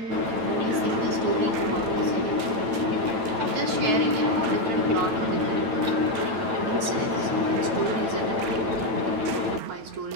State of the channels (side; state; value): left; late; 9.3 ms